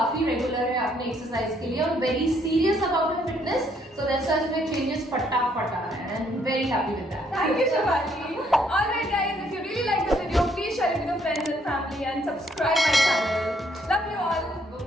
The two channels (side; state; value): both; normal; correlation 0.69